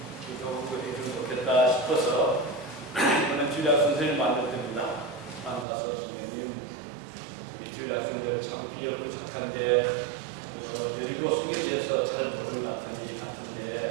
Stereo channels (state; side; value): drops out; left; at 5.7 s